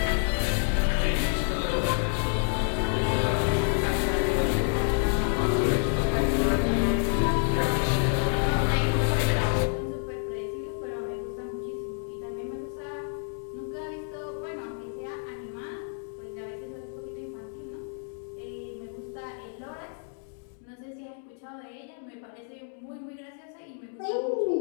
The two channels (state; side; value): silent; right; 59 dB below the other